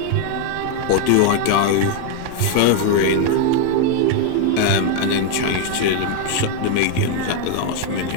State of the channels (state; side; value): different; both; correlation 0.01